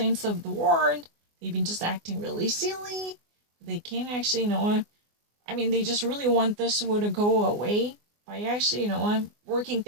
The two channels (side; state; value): left; late; 24 ms